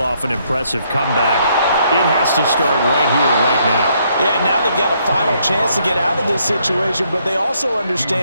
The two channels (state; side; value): inverted; both; correlation -0.71